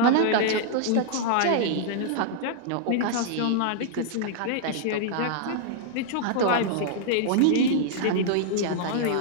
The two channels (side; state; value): both; different; correlation -0.01